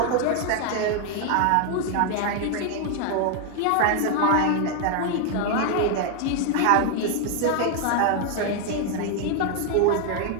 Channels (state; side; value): different; both; correlation 0.00